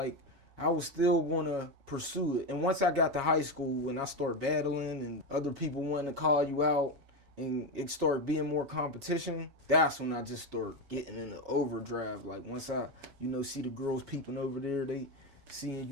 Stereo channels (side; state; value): left; late; 7.2 ms